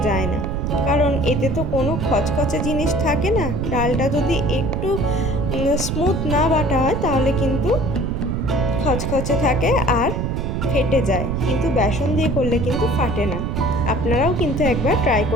যায় না, কারণ এতে তো কোনো খচখচে জিনিস থাকে না। ডালটা যদি একটু স্মুথ না বাটা হয় তাহলে কিন্তু খচখচে থাকে আর ফেটে যায়, কিন্তু বেসন দিয়ে করলে কিন্তু ফাটে না। আপনারাও কিন্তু একবার ট্রাই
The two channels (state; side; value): noise; right; rumble, 2 dB below the sound